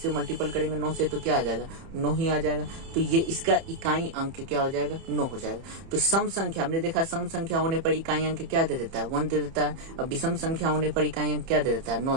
मल्टीपल करेंगे 9 से तो क्या आ जाएगा? 9 ही आ जाएगा। तो ये इसका इकाई अंक क्या हो जाएगा? 9 हो जाएगा। तो सम संख्या हमने देखा, सम संख्या होने पर इकाई अंक क्या दे देता है? 1 दे देता है। अब विषम संख्या होने पर इकाई अंक क्या दे देता है? 9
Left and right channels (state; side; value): late; left; 30 ms